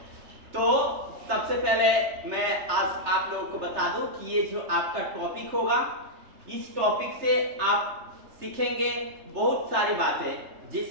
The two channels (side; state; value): left; late; 3.3 ms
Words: तो सबसे पहले मैं आज आप लोगों को बता दूं कि ये जो आपका टॉपिक होगा, इस टॉपिक से आप सीखेंगे बहुत सारी बातें,